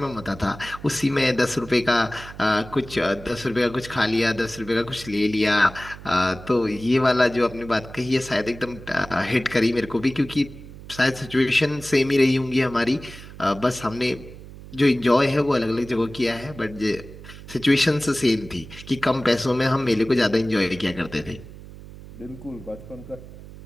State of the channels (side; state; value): right; noise; hum, 16 dB below the sound